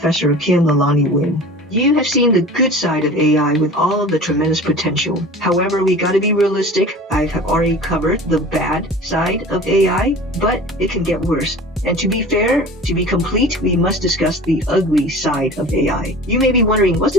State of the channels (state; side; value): normal; both; correlation 0.39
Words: Kim Lalani Win. You have seen the good side of AI with all of the tremendous potential. However, we gotta be realistic. I have already covered the bad side of AI, but it can get worse. And to be fair, to be complete, we must discuss the ugly side of AI. You may be wondering, what's